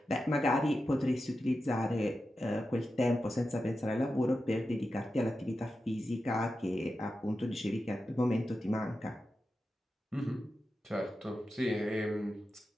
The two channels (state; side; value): normal; both; correlation 0.91